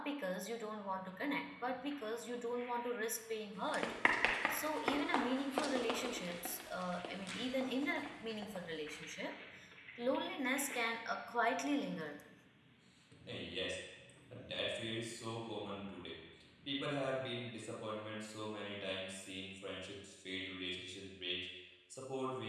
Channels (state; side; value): identical; both; correlation 1.00